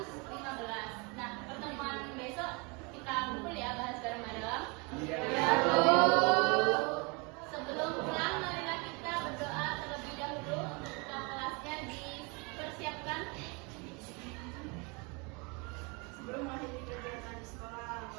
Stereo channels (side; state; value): left; quieter; 30.1 dB